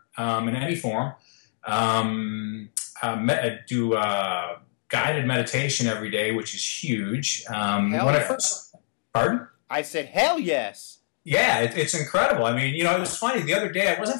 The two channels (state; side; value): silent; right; digital silence